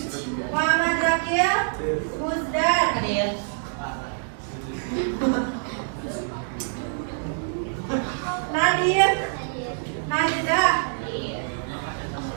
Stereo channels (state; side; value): silent; left; 61 dB below the other